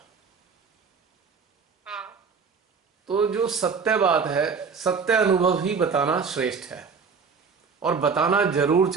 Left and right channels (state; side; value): quieter; left; 5.5 dB